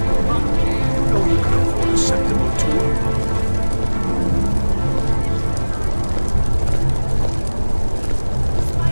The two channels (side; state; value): both; inverted; correlation -1.00